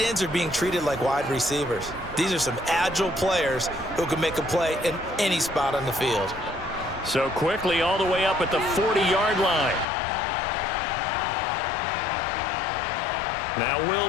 ends are being treated like wide receivers. These are some agile players who can make a play in any spot on the field. So quickly all the way up at the 40-yard line. Now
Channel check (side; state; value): right; drops out; at 9.9 s